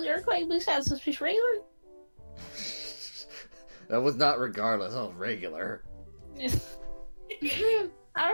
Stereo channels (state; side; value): inverted; both; correlation -1.00